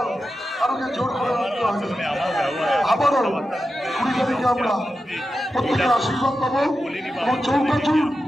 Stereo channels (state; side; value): normal; both; correlation 0.91